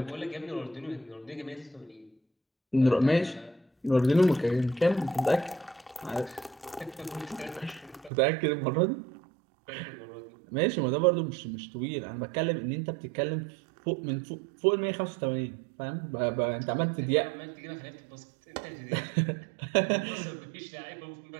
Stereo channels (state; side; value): drops out; left; at 8.1 s